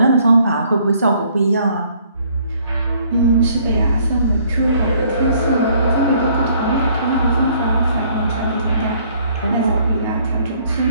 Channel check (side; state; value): both; inverted; correlation -0.62